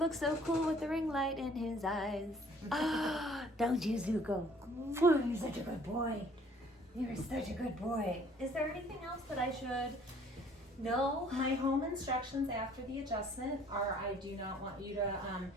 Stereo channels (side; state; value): both; normal; correlation 0.57